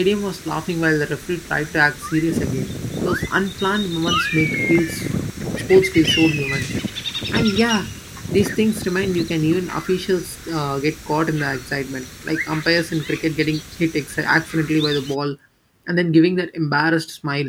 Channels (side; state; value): both; identical; correlation 1.00